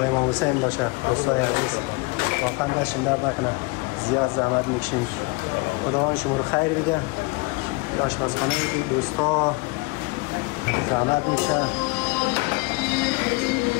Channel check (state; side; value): quieter; right; 26.8 dB